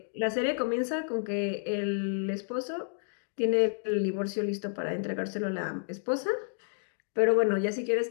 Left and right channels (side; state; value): right; silent; digital silence